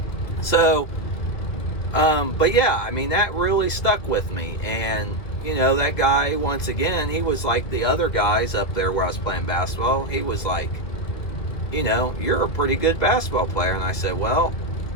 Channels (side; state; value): right; late; 2.4 ms